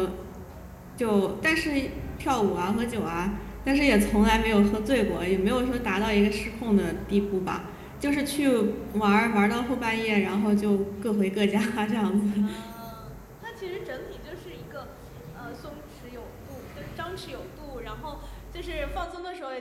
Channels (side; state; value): both; identical; correlation 1.00